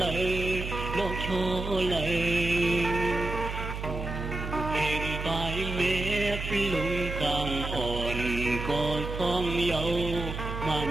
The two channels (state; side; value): noise; right; hum, 6 dB below the sound